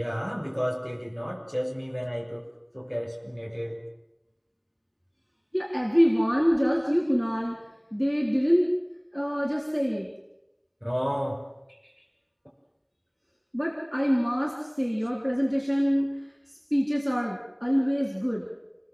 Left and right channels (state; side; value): identical; both; correlation 1.00